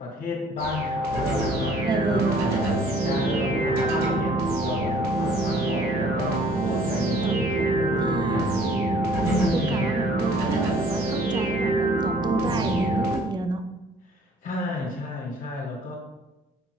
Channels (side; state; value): both; normal; correlation 0.56